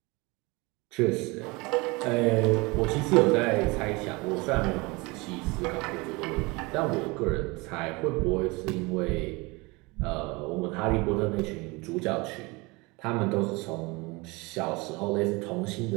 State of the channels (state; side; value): quieter; left; 25.4 dB